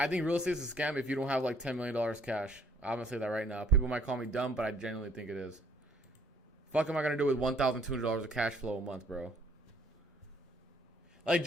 think real estate is a scam if you don't have like $10 million cash. I'm gonna say that right now. People might call me dumb, but I genuinely think it is. Fuck am I gonna do with $1,200 of cash flow a month, bro? Like,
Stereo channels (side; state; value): both; normal; correlation 0.63